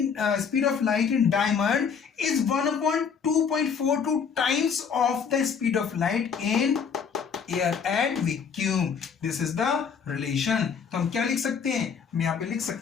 in diamond is 1/2.42 times of the speed of light in air and vacuum. This is the relation. तो हम क्या लिख सकते हैं, हम यहां पे लिख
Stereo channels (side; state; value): right; quieter; 6.5 dB